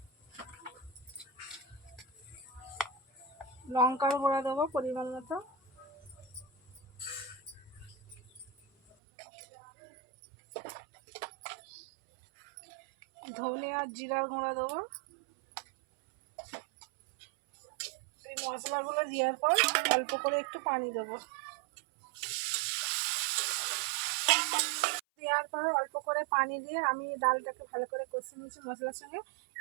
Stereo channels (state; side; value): drops out; left; at 9.0 s